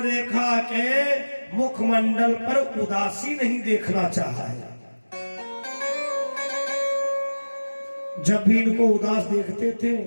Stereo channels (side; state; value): both; inverted; correlation -1.00